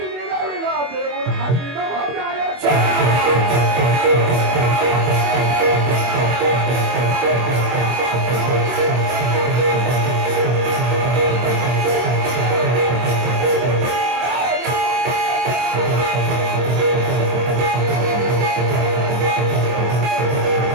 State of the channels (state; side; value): late; left; 24 ms